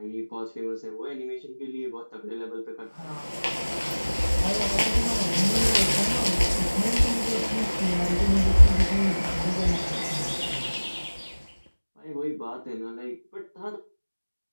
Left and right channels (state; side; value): inverted; both; correlation -1.00